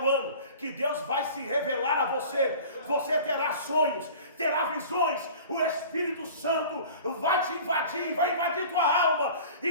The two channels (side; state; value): both; inverted; correlation -0.42